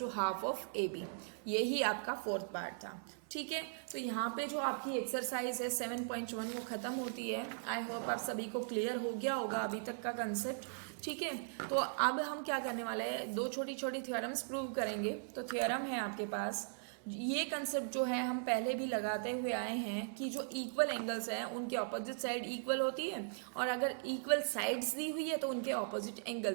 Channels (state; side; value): silent; left; 52 dB below the other